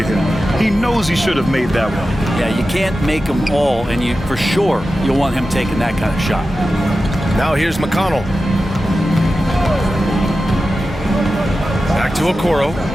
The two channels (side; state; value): both; normal; correlation 0.93